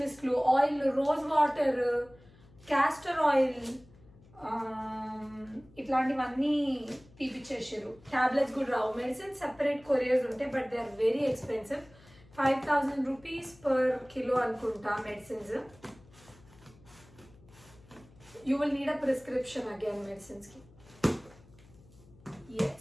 మిస్ట్లు, oil, rose water, castor oil, ఇట్లాంటివన్నీ తీపిచ్చేసారు. ట్యాబ్లెట్స్ కూడా రావు. మెడిసిన్ సెపరేట్ కొరియర్స్ ఉంటాయి but they are very expensive. 5,000 rupees per kilo అనుకుంటా medicines. You will need a prescription again మెడిసిన్స్కి.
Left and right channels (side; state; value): left; noise; hum, 25 dB below the sound